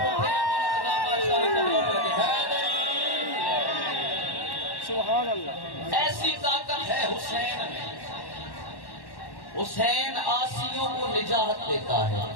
اٹھے سبحان اللہ۔ ایسی طاقت ہے حسین میں۔ حسین آسیوں کو نجات دیتا ہے۔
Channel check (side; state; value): right; late; 1.1 ms